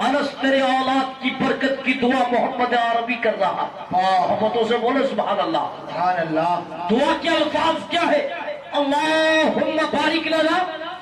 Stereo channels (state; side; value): identical; both; correlation 1.00